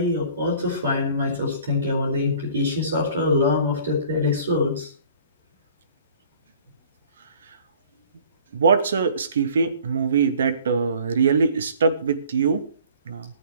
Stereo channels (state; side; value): inverted; both; correlation -0.52